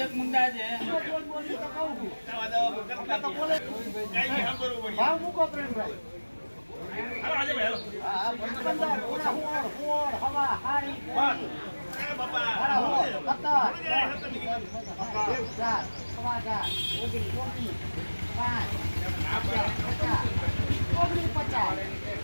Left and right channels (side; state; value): both; inverted; correlation -1.00